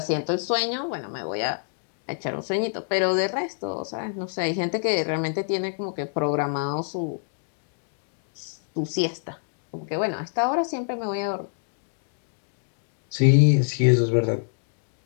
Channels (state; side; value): silent; right; digital silence